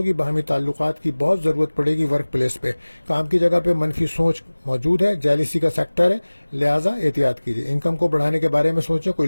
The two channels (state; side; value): inverted; both; correlation -1.00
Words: باہمی تعلقات کی بہت ضرورت پڑے گی. ورک پلیس پہ, کام کی جگہ پہ منفی سوچ موجود ہے. جیلیسی کا سیکٹر ہے, لہٰذا احتیاط کیجیے. انکم کو بڑھانے کے بارے میں سوچیں. کوئی